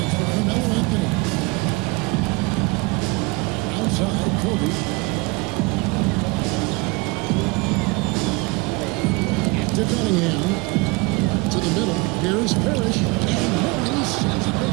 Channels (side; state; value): left; quieter; 25.5 dB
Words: for Carmelo Anthony. Outside Kobe. To Cunningham. To the middle. Here's Parrish. And Mourning sends it